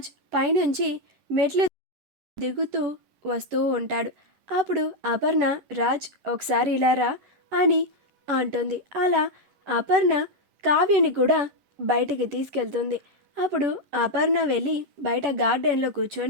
పైనుంచి మెట్లు దిగుతూ వస్తూ ఉంటాడు. అప్పుడు అపర్ణ రాజ్ ఒకసారి ఇలా రా అని అంటుంది. అలా అపర్ణ కావ్యని కూడా బయటికి తీసుకెళ్తుంది. అప్పుడు అపర్ణ వెళ్ళి బయట గార్డెన్లో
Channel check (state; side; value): late; left; 11 ms